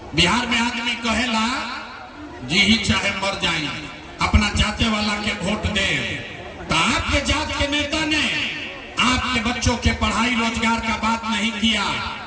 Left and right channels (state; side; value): identical; both; correlation 1.00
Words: बिहार में आदमी कहेला जी ही चाहे मर जाए अपना जाते वाला के वोट दे, तो आपके जात के नेता ने आपके बच्चों के पढ़ाई रोजगार का बात नहीं किया,